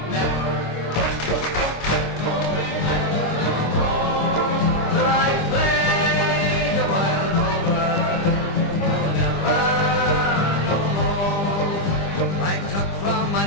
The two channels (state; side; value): late; right; 25 ms